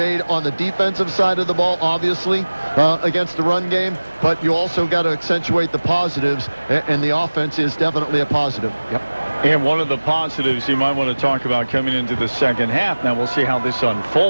on the defensive side of the ball, obviously, against the run game, but you also got to accentuate the positives, and the offense is definitely a positive. Yep. And one of the positives you might want to talk about coming into the second half, now we'll see how this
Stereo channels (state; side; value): inverted; both; correlation -1.00